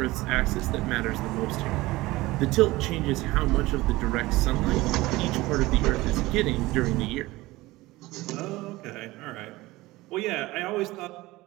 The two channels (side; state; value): left; quieter; 19.5 dB